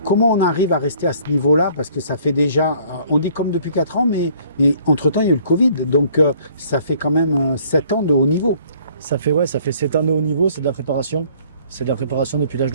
Comment on arrive à rester à ce niveau-là? Parce que ça fait déjà, on dit comme depuis 4 ans, mais entre-temps il y a eu le Covid. Donc ça fait quand même 7 ans de haut niveau. Ça fait 7 ans de haut niveau, c'est de la préparation. C'est de la préparation depuis l'âge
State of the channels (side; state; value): both; inverted; correlation -0.58